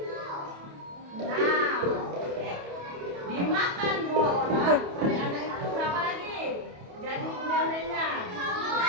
6. Dimakan 2 orang, anak-anak itu berapa lagi? Jadi onde-ondenya.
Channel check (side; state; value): left; late; 28 ms